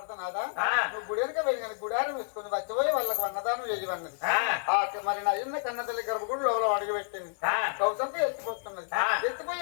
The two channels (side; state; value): right; silent; digital silence